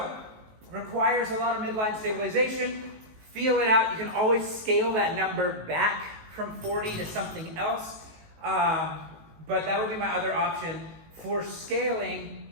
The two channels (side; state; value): left; late; 19 ms